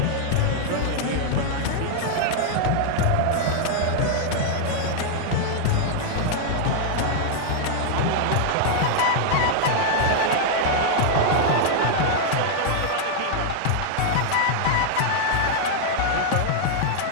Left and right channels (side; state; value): both; different; correlation -0.01